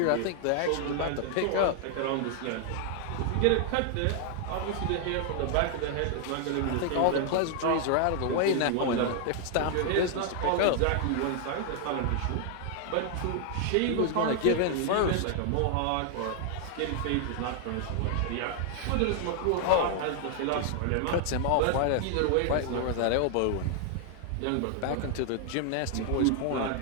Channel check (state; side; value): different; both; correlation 0.00